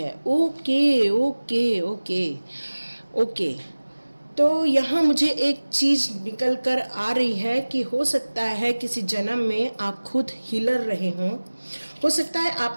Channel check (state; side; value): inverted; both; correlation -1.00